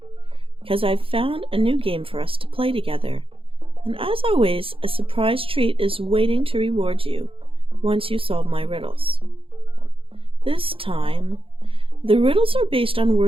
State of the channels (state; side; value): late; left; 0.26 ms